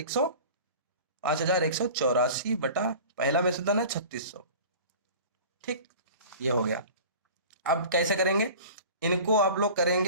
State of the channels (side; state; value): both; inverted; correlation -0.40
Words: 5184 बटा पहला मिश्र धन है 3600। ठीक, ये हो गया। अब कैसे करेंगे, इनको आप लोग